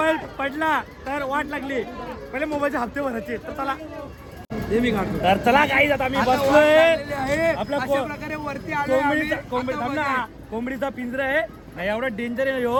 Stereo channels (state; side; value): identical; both; correlation 1.00